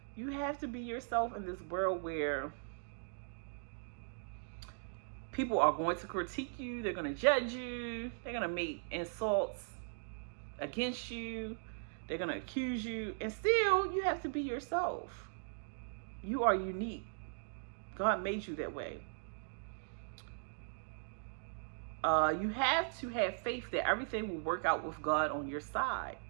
You have to be yourself in this world where people are going to critique you. They're going to judge you. They're going to make insults against you. They're going to accuse you. And still, you have to be yourself. You are unique. God made you that way. You have to have faith that everything will work out with God on your side.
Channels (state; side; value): silent; left; digital silence